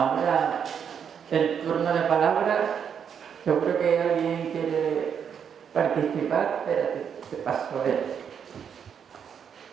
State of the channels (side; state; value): left; quieter; 7.6 dB